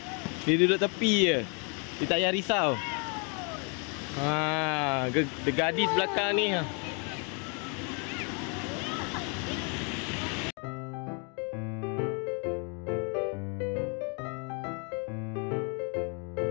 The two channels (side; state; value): right; quieter; 37.0 dB